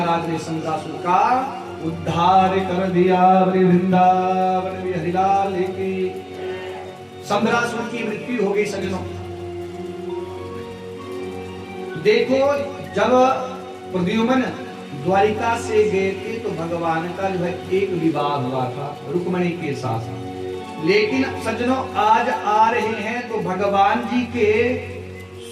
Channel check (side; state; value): both; identical; correlation 1.00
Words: ने सम्रासुर का उद्धार कर दिया। वृंदावन बिहारी लाल की। सम्रासुर की मृत्यु हो गई सज्जनों। देखो जब प्रद्युम्न द्वारिका से गए थे तो भगवान का जो है एक विवाह हुआ था रुक्मणी के साथ, लेकिन सज्जनों आज आ रहे हैं तो भगवान जी के